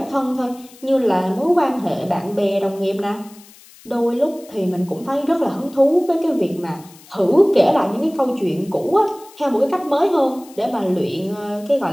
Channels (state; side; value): noise; left; hiss, 23 dB below the sound